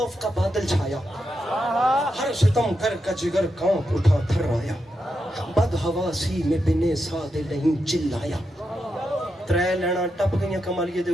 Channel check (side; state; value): both; normal; correlation 0.85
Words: کا بادل چھایا, ہر ستم کر کا جگر کانپ اٹھا تھر آیا. بد حواسی میں بنے سادے نہیں چلایا. 3 لینا ٹپ گئیاں کمالیے دے